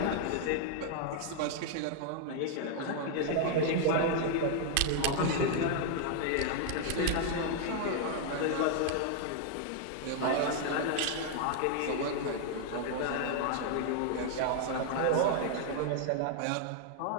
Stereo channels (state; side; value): different; both; correlation 0.00